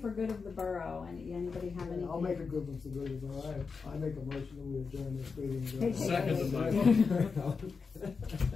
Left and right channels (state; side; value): quieter; right; 5.0 dB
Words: good of the borough? Anybody have anything? I'll make a good one for good of the borough. I make a motion that we adjourn this meeting. Second the motion.